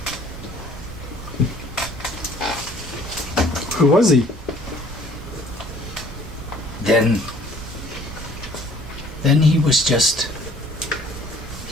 Who was he? Then he was just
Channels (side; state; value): both; normal; correlation 0.55